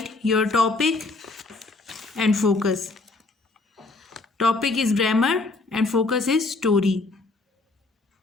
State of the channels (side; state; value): right; quieter; 3.5 dB